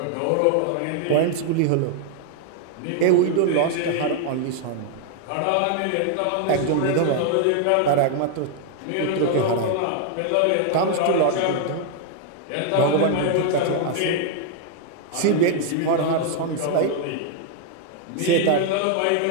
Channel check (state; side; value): different; both; correlation 0.00